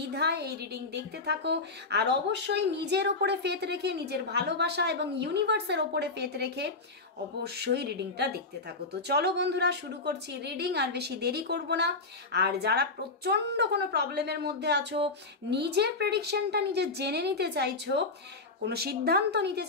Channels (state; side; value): quieter; right; 3.6 dB